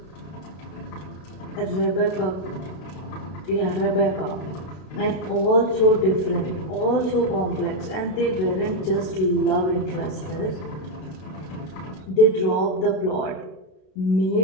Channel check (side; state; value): right; late; 32 ms